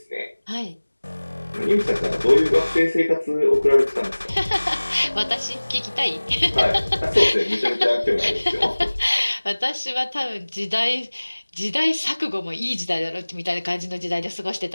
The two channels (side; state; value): both; inverted; correlation -1.00